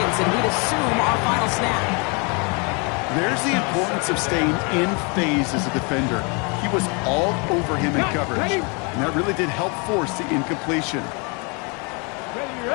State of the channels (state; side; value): quieter; right; 32.8 dB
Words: and we'd assume our final snap. There's the importance of staying in phase as a defender. He was all over him in coverage, and that really did help force the incompletion.